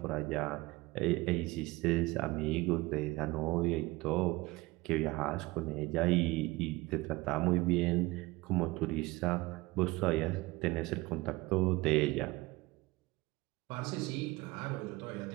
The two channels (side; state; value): left; quieter; 21.4 dB